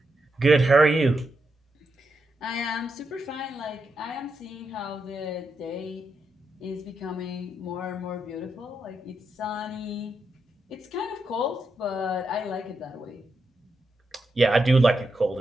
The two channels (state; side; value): normal; both; correlation 0.84